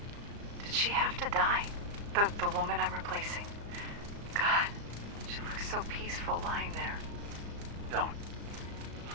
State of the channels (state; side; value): late; left; 35 ms